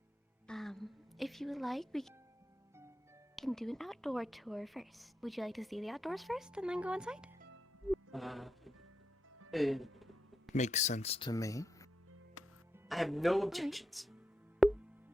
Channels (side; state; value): both; normal; correlation 0.84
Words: If you would like, we can do an outdoor tour first. Would you like to see the outdoors first and then go inside? Makes sense to me. I have no objections.